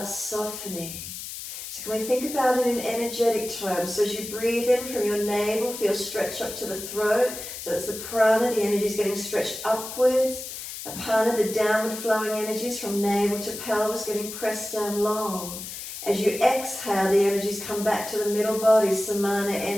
softening. So can we think about it in energetic terms? So as you breathe in from your navel, feel stretch up to the throat. So that's the prana, the energy is getting stretched upwards. Apana, the downward flowing energies from navel to pelvis getting pressed down long. As you exhale, the energies come back to the middle body, samana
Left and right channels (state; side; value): noise; left; hiss, 9 dB below the sound